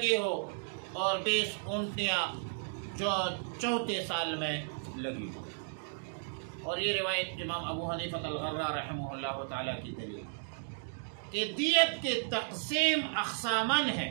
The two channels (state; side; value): silent; left; digital silence